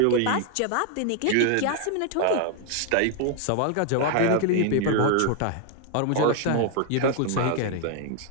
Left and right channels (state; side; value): different; both; correlation 0.00